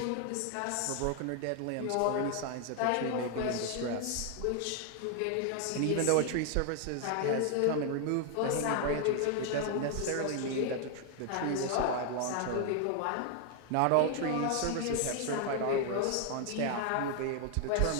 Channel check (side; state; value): both; different; correlation 0.00